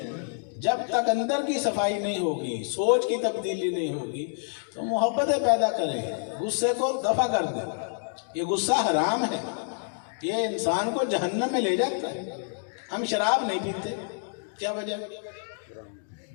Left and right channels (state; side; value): silent; right; digital silence